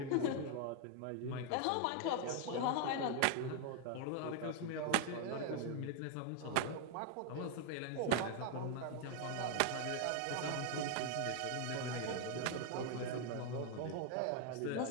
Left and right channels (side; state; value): both; different; correlation 0.00